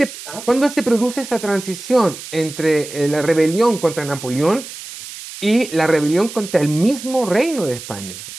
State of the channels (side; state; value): right; noise; hiss, 12 dB below the sound